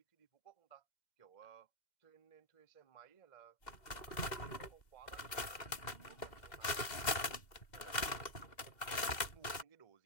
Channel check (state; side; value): late; right; 2.0 ms